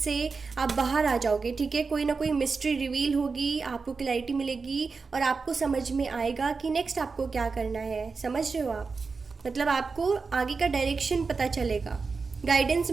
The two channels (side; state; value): left; quieter; 4.6 dB